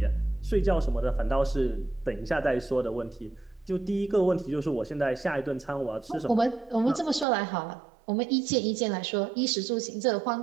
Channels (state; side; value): drops out; left; at 7.2 s